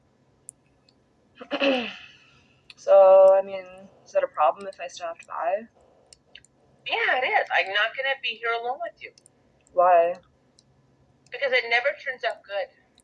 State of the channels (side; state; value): both; identical; correlation 1.00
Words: So, I mean, is that a problem if I stopped by? Yeah, it is. I'm not going to be here alone with you. Why? Because it never turns out good.